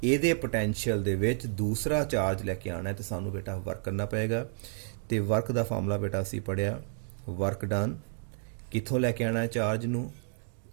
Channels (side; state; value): left; silent; digital silence